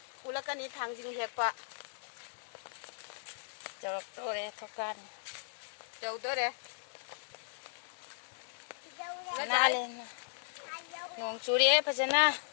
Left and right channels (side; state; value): right; silent; 53 dB below the other